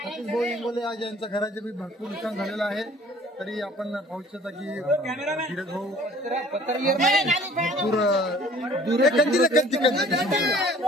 सतीश भाऊ इंगोले आज यांच्या घराचे बी भरपूर नुकसान झालेलं आहे. तरी आपण पाहू शकता की धीरज भाऊ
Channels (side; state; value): both; normal; correlation 0.53